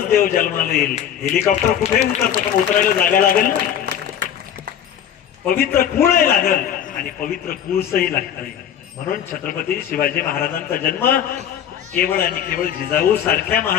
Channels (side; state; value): right; quieter; 9.7 dB